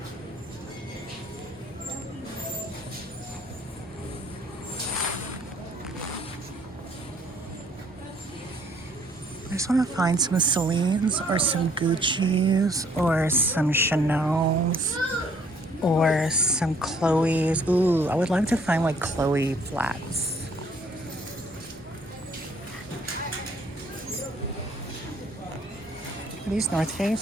I just want to find some Celine's or some Gucci's or some Chanel's or some Chloe's. Ooh, I would love to find like Chloe flats. Are these North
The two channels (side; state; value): both; normal; correlation 0.62